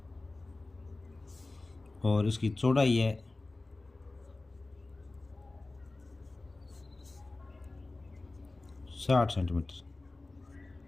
और इसकी चौड़ाई है 60 सेंटीमीटर।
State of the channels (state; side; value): quieter; right; 3.2 dB